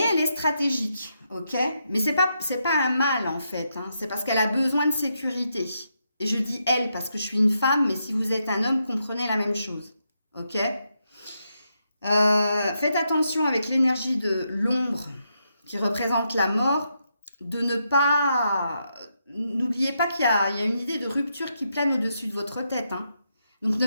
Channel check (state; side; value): inverted; both; correlation -0.82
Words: elle est stratégique, ok? Mais c'est pas un mal, en fait. Hein. C'est parce qu'elle a besoin de sécurité. Et je dis elle parce que je suis une femme, mais si vous êtes un homme, comprenez la même chose, ok? Faites attention avec l'énergie de l'ombre qui représente la mort, de ne pas... N'oubliez pas qu'il y a une idée de rupture qui plane au-dessus de votre tête. Hein. Donc ne